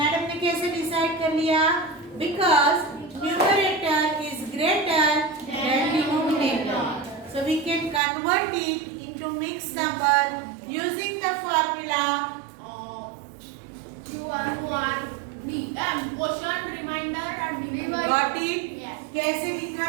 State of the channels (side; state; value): left; drops out; at 8.0 s